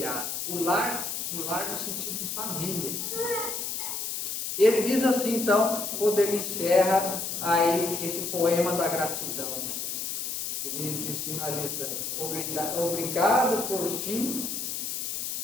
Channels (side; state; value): left; noise; hiss, 3 dB below the sound